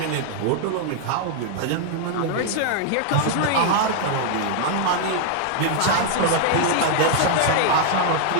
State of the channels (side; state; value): both; different; correlation 0.00